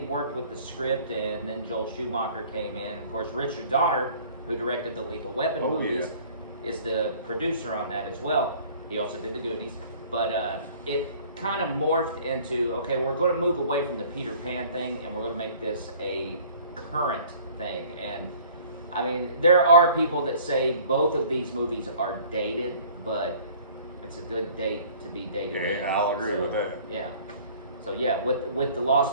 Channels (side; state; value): both; inverted; correlation -0.51